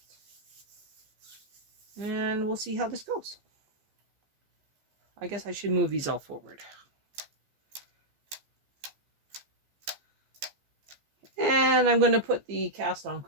And we'll see how this goes. I guess I should move these all forward. And I'm going to put the cast-on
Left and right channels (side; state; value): left; late; 15 ms